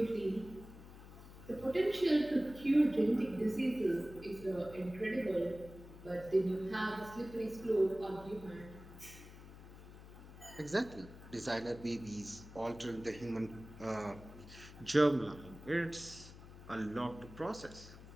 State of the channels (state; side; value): noise; left; hum, 16 dB below the sound